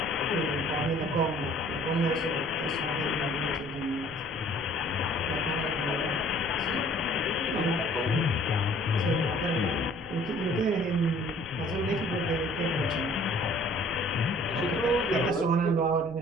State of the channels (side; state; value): right; noise; rumble, 18 dB below the sound